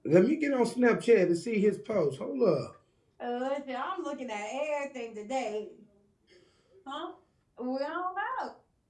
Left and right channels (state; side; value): identical; both; correlation 1.00